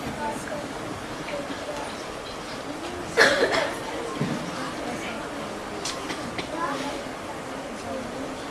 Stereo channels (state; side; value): identical; both; correlation 1.00